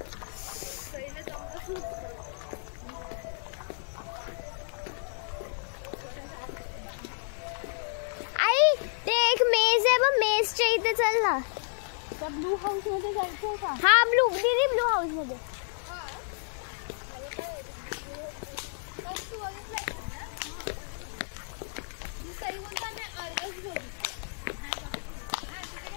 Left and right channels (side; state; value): right; silent; 57 dB below the other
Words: आई ते एक मेज हे बघ मेसच्या इथे चल ना. त्या ब्लू हाऊस मध्ये जायचंय का? हा ब्लू दीदी ब्लू हाऊस मध्ये.